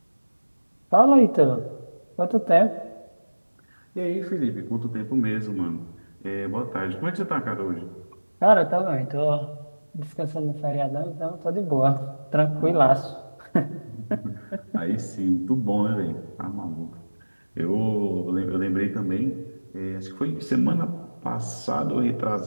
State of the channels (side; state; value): both; inverted; correlation -1.00